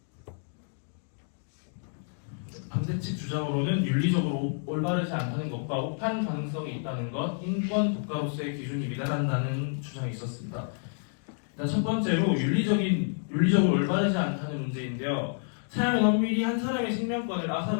반대측 주장으로는 윤리적으로 올바르지 않다는 것과 오판 가능성이 있다는 것, 인권 국가로서의 기준이 미달한다는 주장이 있었습니다. 일단 첫 번째로 윤리적으로 올바르지 않다는 문제인데요. 사형은 엄밀히 한 사람의 생명권을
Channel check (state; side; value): silent; right; digital silence